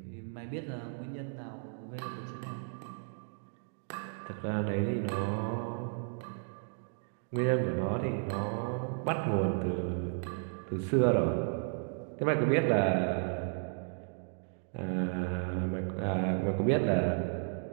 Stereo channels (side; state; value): left; silent; 55 dB below the other